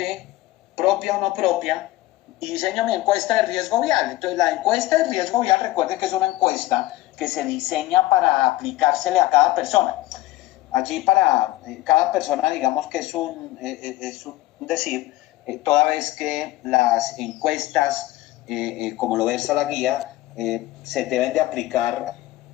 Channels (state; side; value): quieter; right; 16.9 dB